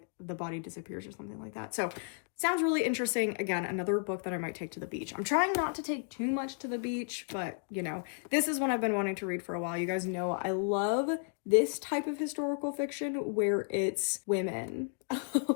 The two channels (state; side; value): silent; right; 56 dB below the other